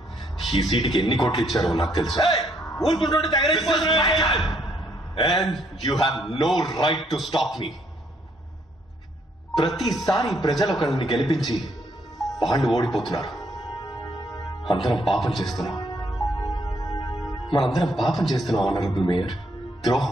ఈ సీటుకి ఎన్ని కోట్లు ఇచ్చారో నాకు తెలుసు. And you have no right to stop me. ప్రతిసారి ప్రజలు ఒకరిని గెలిపించి వాళ్ళు ఓడిపోతున్నారు. అందరం పాపం చేస్తున్నాం, మనందరం పాపం చేస్తున్నాం ఆనరబుల్ మేయర్.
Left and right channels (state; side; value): normal; both; correlation 0.70